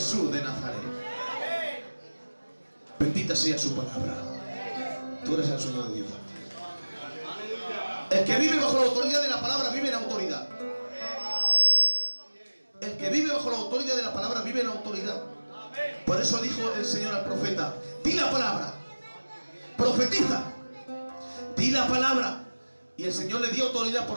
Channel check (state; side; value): inverted; both; correlation -1.00